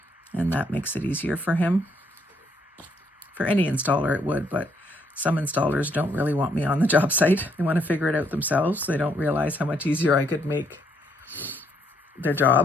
And that makes it easier for him. For any installer it would, but some installers don't really want me on the job site. They want to figure it out themselves. They don't realize how much easier I could make their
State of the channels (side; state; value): both; normal; correlation 0.71